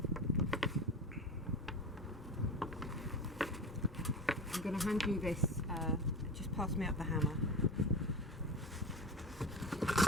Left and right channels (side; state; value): both; normal; correlation 0.30